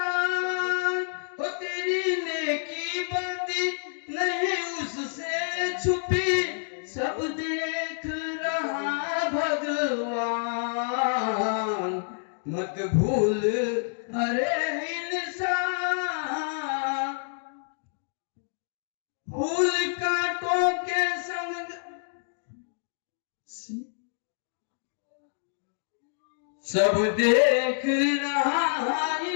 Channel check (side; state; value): right; silent; digital silence